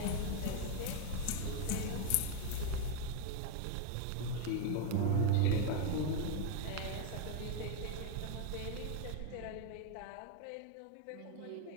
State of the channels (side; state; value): both; different; correlation 0.01